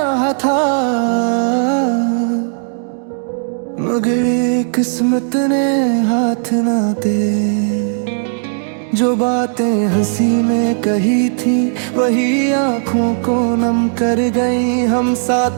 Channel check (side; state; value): left; silent; digital silence